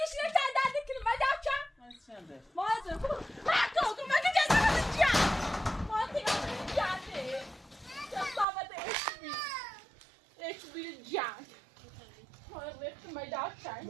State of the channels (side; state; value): left; drops out; at 8.5 s